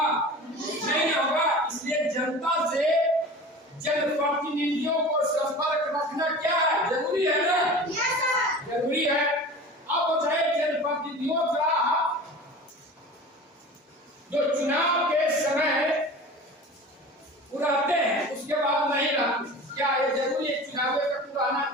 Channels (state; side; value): normal; both; correlation 0.37